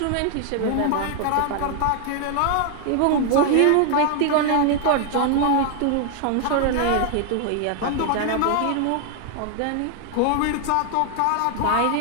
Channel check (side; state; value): both; different; correlation 0.00